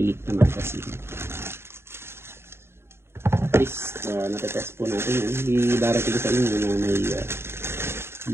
na magazine. At least natetest po natin yan. Hindi darating sa inyo na may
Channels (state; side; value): late; left; 0.12 ms